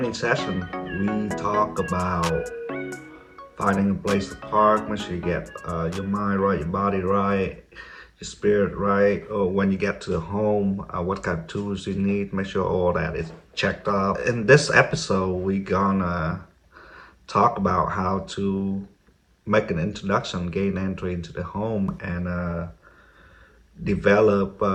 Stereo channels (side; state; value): both; identical; correlation 1.00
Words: session, we talk about finding a place to park. Make sure you get your mind right, your body right, your spirit right. Or when you get to the home, what kind of tools you need. Make sure all that is checked off. In this episode, we gonna talk about how to make an introduction, gain entry into the home, and develop